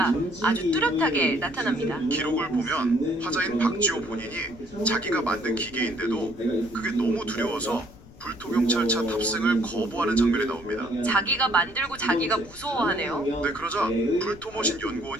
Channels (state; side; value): noise; left; rumble, 20 dB below the sound